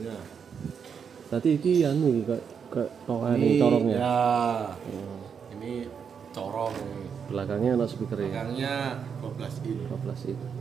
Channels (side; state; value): left; quieter; 6.9 dB